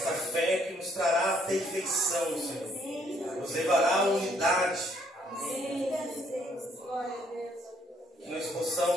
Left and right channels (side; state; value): both; normal; correlation 0.67